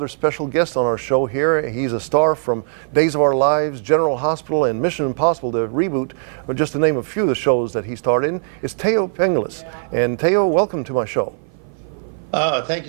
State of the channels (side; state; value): left; silent; 55 dB below the other